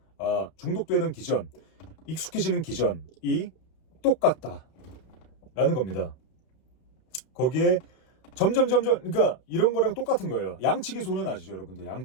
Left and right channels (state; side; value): late; right; 32 ms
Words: 중독되는 기전, 익숙해지는 기전이 똑같다라는 겁니다. 거기에 점점 그러니까 이런 거랑 똑같은 거예요. 양치기 소년 아시죠, 여러분들?